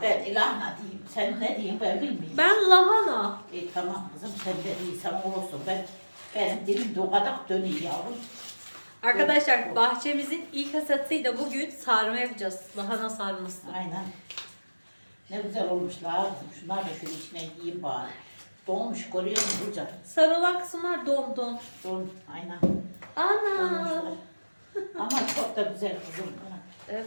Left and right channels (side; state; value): both; inverted; correlation -1.00